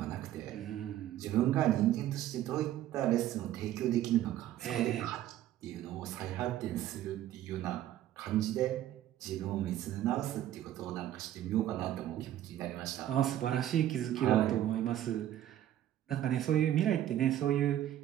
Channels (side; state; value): left; quieter; 12.5 dB